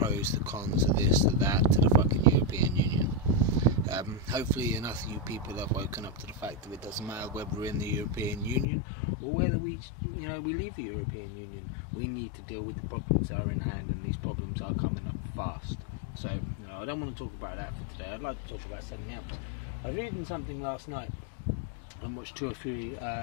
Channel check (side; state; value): right; drops out; at 8.7 s